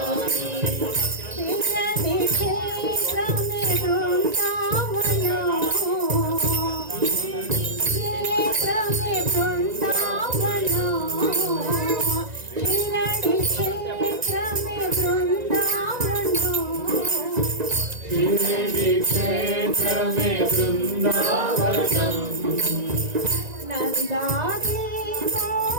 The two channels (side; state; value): left; late; 1.9 ms